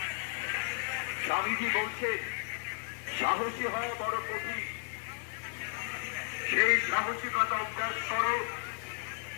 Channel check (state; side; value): silent; right; 55 dB below the other